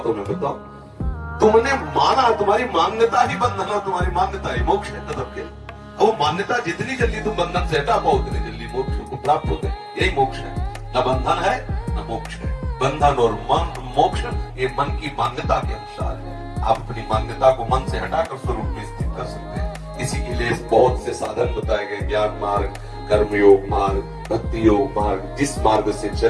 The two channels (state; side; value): identical; both; correlation 1.00